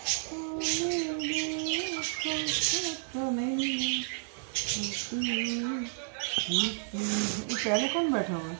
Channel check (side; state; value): left; silent; 57 dB below the other